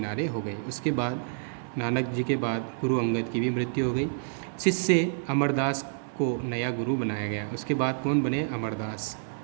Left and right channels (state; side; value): silent; left; 59 dB below the other